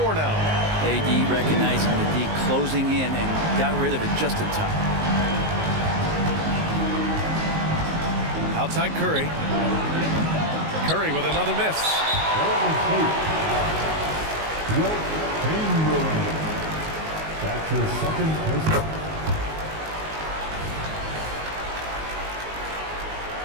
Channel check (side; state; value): left; late; 19 ms